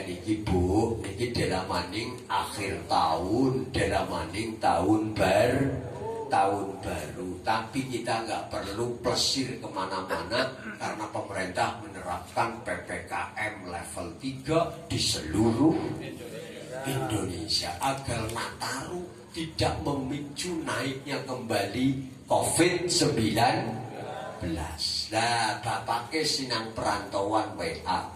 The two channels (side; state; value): both; identical; correlation 1.00